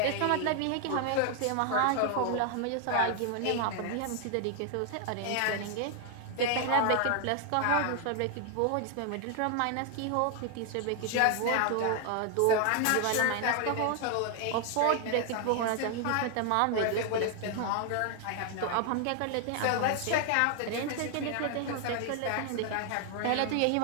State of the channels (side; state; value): both; different; correlation 0.00